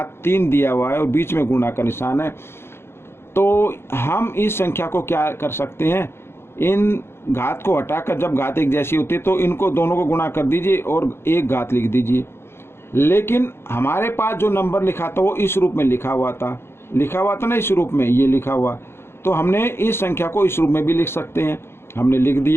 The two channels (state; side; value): late; right; 0.12 ms